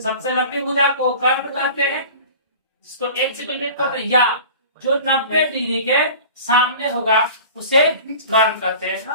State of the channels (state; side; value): inverted; both; correlation -0.41